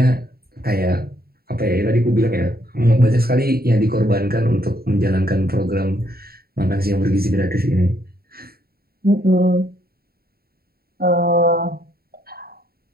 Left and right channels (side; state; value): left; late; 0.45 ms